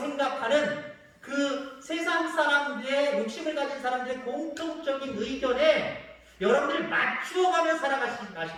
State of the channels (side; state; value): both; identical; correlation 1.00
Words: 그 세상 사람들의 욕심을 가진 사람들의 공통적인 의견에 여러분들이 맞추어가며